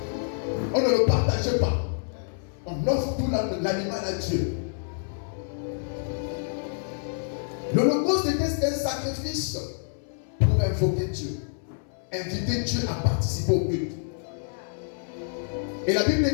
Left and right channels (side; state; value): right; silent; 60 dB below the other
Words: On ne le partage pas. On offre tout l'animal à Dieu. L'Holocauste était un sacrifice pour invoquer Dieu, inviter Dieu à participer au culte. Et la Bible